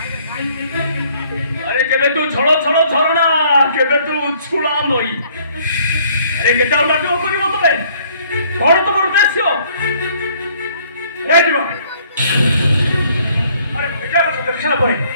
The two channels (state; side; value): inverted; both; correlation -0.61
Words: अरे केबे तू छड़ो छड़ो झरणा केबे तू छुळा नई अरे केटा नाटक करिवो तबे कोन तमर उद्देश्य ए जीवा अरे बेटा को देखला परे